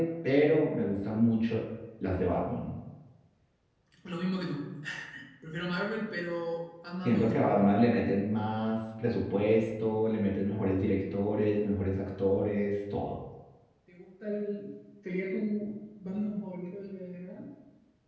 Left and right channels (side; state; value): both; identical; correlation 1.00